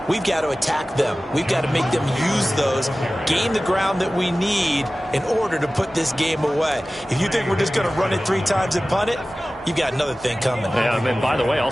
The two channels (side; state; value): both; normal; correlation 0.97